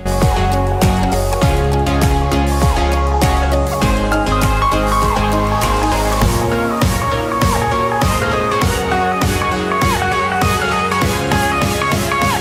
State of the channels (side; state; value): both; identical; correlation 1.00